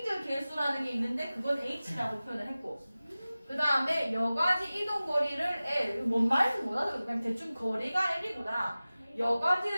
개수라는 게 있는데 그건 H라고 표현을 했고 그 다음에 여과지 이동 거리를 L 뭔 말인지 못하더라도 그냥 대충 거리가 L이구나.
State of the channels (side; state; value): both; inverted; correlation -0.97